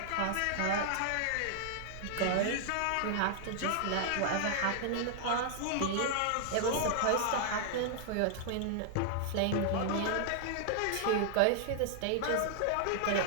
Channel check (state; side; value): different; both; correlation 0.00